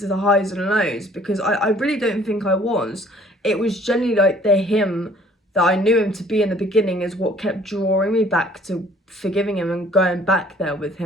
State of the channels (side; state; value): both; normal; correlation 0.56